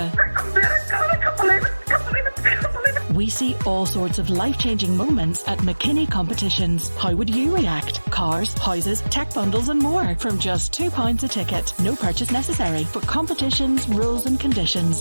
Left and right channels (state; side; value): inverted; both; correlation -1.00